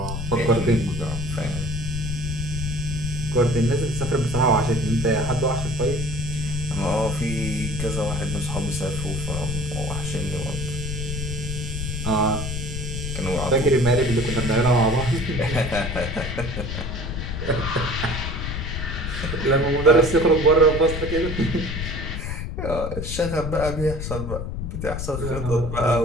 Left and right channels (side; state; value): left; noise; rumble, 4 dB below the sound